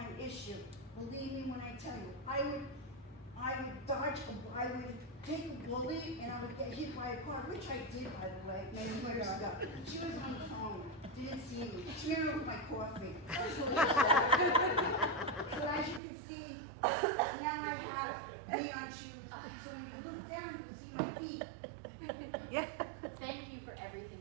issue. Believe me when I tell you, I would take a bullet and I would get hit by a car, which I did, by the way, many years ago. She was on the phone, didn't see me. She ran over my coffee. I was really sad. So as you can see, now I have neon shoes, so when you look down, you can see my feet. Yeah. Thank you for everything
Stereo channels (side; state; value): left; drops out; at 16.0 s